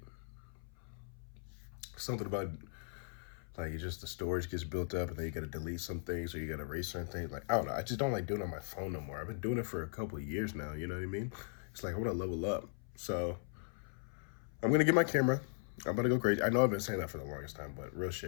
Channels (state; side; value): silent; right; 52 dB below the other